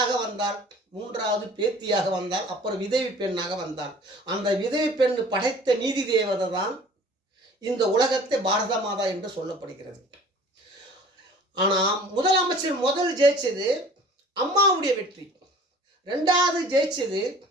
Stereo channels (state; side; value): normal; both; correlation 0.47